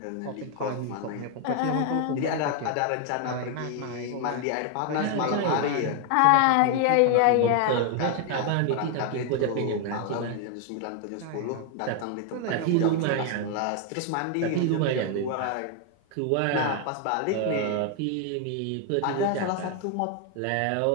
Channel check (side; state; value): both; different; correlation 0.00